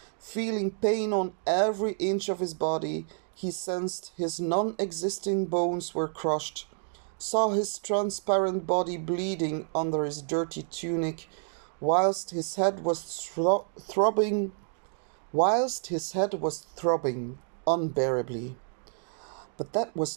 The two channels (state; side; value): silent; left; 58 dB below the other